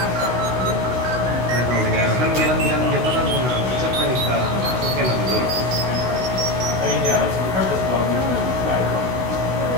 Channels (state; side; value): late; left; 16 ms